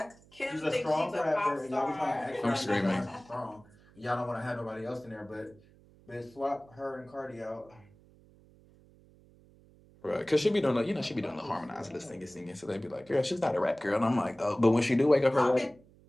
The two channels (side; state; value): right; noise; hum, 27 dB below the sound